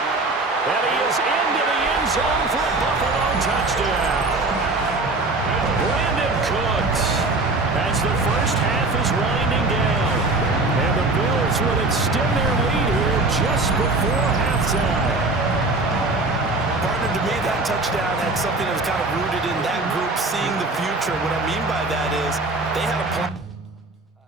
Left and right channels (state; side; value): quieter; left; 3.2 dB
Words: And he is into the end zone for a Buffalo touchdown. Brandon Cooks, as the first half is winding down. And the Bills will extend their lead here just before halftime. Partner, to me, that touchdown had something that was kind of rooted in that group seeing the future. What I mean by that is they had a plan.